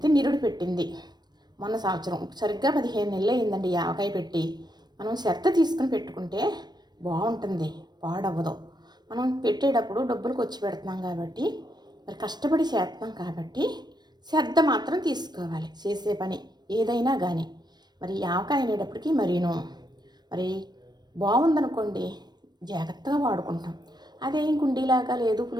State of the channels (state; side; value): late; left; 0.20 ms